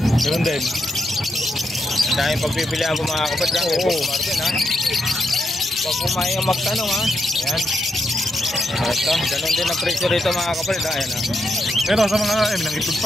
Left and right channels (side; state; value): both; normal; correlation 0.82